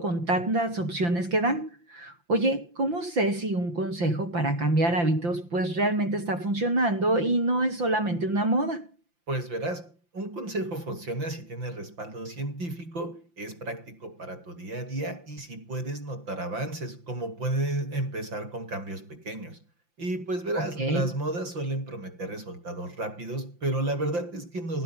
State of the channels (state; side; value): late; left; 5.8 ms